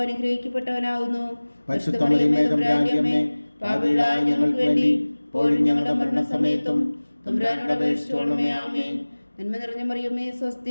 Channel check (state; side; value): inverted; both; correlation -1.00